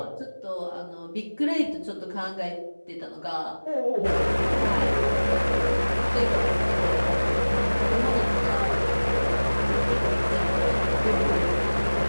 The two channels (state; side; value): inverted; both; correlation -1.00